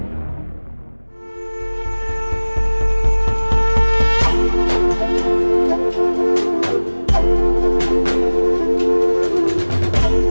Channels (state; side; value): inverted; both; correlation -1.00